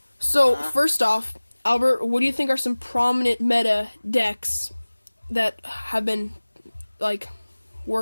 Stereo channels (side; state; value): both; inverted; correlation -1.00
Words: So first off, Albert, what do you think are some prominent meta decks that have been